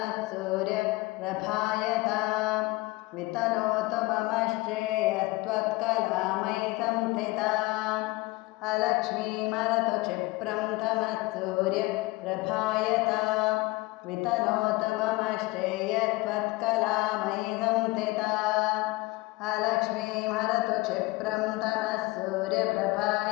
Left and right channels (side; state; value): right; quieter; 21.7 dB